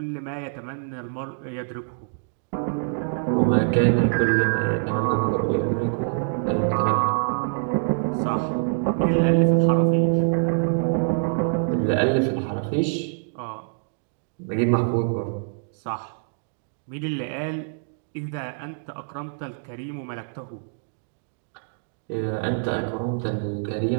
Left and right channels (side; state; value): left; silent; digital silence